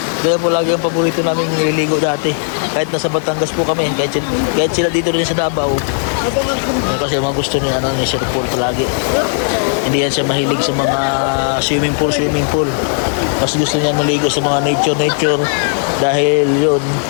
Kaya po lagi ang paborito namin nililigo dati. Kahit nasa Batangas po kami. Kahit sila dito rin sa Davao. Kasi mga gusto ni, ni Sir Paul palagi. Hindi yan siya mahilig sa mga swimming pool. Mas gusto niya maligo sa mga nature. Dahil yun,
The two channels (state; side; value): silent; right; digital silence